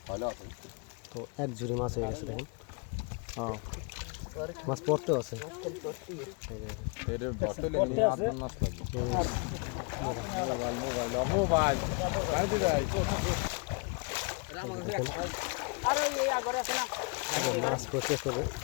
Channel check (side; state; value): right; quieter; 31.4 dB